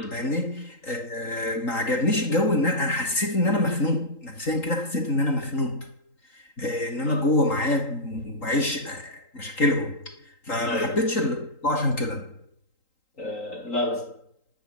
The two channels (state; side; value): late; right; 3.8 ms